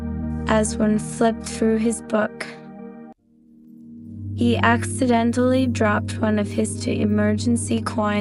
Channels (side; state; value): both; identical; correlation 1.00